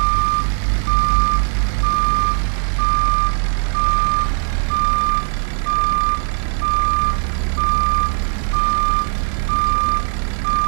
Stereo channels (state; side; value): silent; left; digital silence